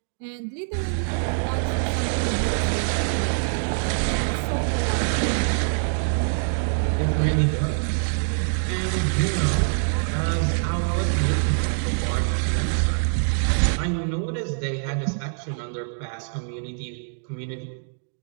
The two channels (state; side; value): silent; left; digital silence